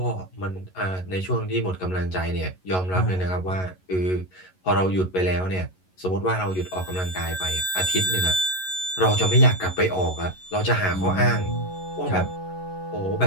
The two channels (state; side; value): late; right; 11 ms